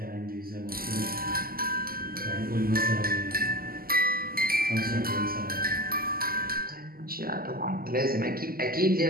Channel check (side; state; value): left; late; 0.43 ms